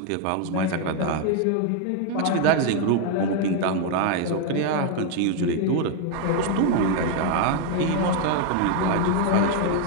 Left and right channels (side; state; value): both; different; correlation 0.01